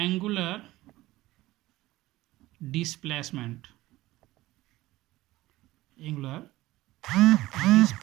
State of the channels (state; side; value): quieter; left; 17.5 dB